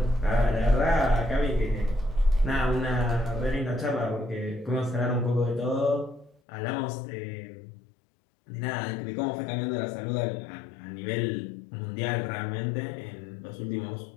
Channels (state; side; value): drops out; right; at 6.4 s